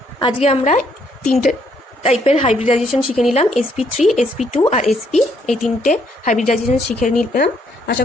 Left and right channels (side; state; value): both; normal; correlation 0.70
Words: আজকে আমরা তিনটে টাইপের হাইব্রিডাইজেশন শিখে নিলাম, sp3, sp2 আর sp। এই তিনটে হাইব্রিডাইজেশন শিখে নিলাম। আশা